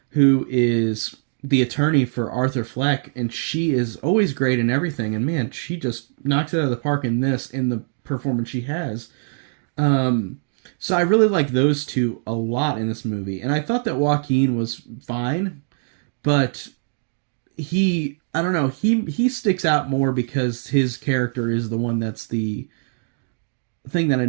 who is the attorney for Arthur Fleck, and she is always great in everything. And man, she just knocks it out of the park in the performance she has. Um, so I really like those two a lot in this movie, and I thought that Joaquin was fine, but I don't know, he sticks out more because his character is the one that's the thing that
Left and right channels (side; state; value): left; silent; digital silence